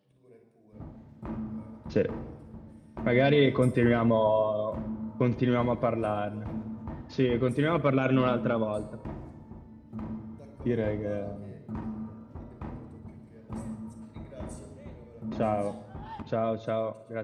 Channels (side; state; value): both; identical; correlation 1.00